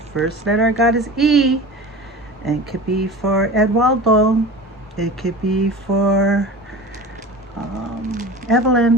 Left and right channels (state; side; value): normal; both; correlation 0.35